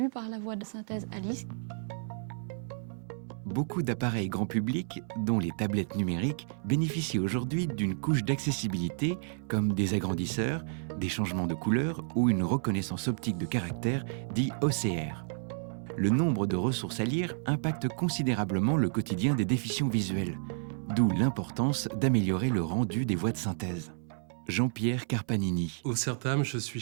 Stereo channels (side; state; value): left; silent; 57 dB below the other